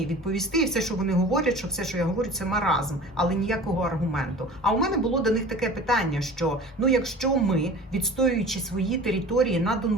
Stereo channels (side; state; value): both; normal; correlation 0.40